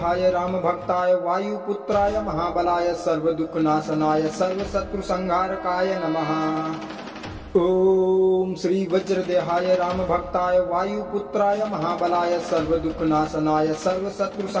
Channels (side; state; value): both; identical; correlation 1.00